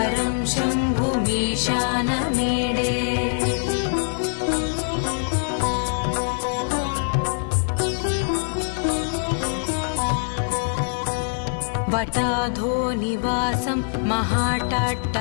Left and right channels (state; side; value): silent; right; 56 dB below the other